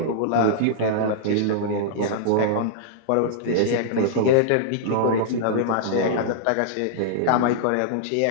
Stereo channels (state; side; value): different; both; correlation -0.01